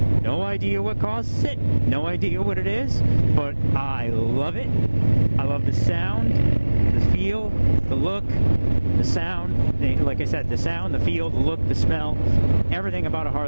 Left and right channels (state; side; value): inverted; both; correlation -1.00